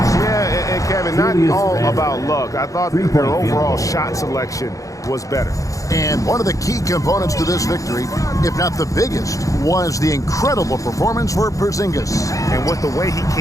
Yeah, and Kevin, not all about luck. I thought their overall shot selection was better. And one of the key components to this victory, if not the biggest, was the incredible performance for Porzingis. And with the way he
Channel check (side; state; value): right; late; 0.16 ms